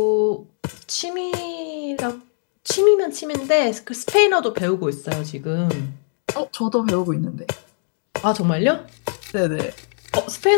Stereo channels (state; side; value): silent; right; digital silence